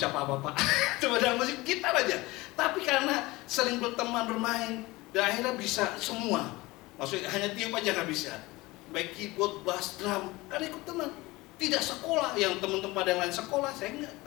apa-apa, cuma dalam musik gitar aja. Tapi karena sering berteman, bermain, dan akhirnya bisa semua. Maksudnya hanya tiup aja nggak bisa. Baik keyboard, bass, drum, kan ikut teman. Tidak sekolah, yang teman-teman yang lain sekolah, saya enggak,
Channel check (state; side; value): quieter; right; 21.1 dB